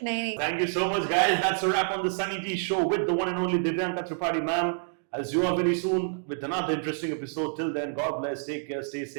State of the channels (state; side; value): silent; left; digital silence